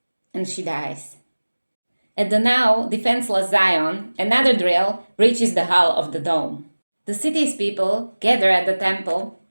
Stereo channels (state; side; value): inverted; both; correlation -1.00